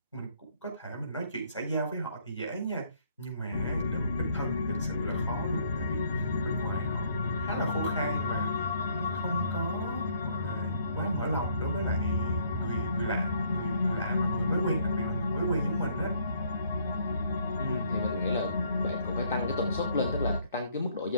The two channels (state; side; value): inverted; both; correlation -0.66